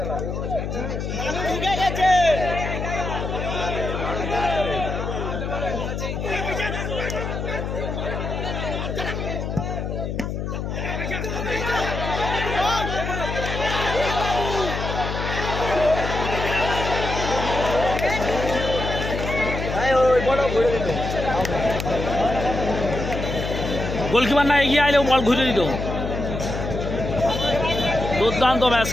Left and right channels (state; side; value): noise; left; hum, 4 dB below the sound